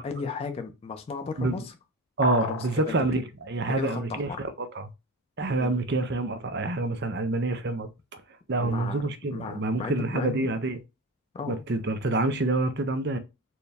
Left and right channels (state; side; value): normal; both; correlation 0.27